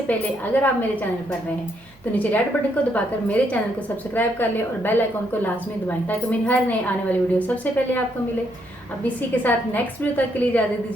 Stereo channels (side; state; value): right; noise; hum, 29 dB below the sound